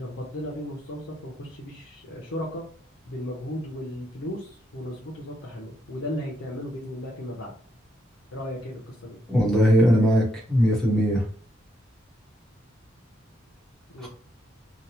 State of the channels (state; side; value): normal; both; correlation 0.78